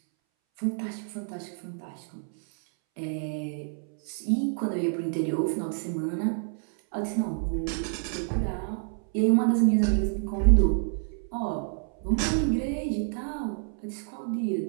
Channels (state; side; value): silent; left; 59 dB below the other